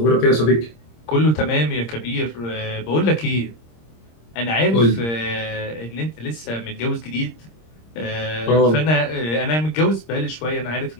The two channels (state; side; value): late; right; 26 ms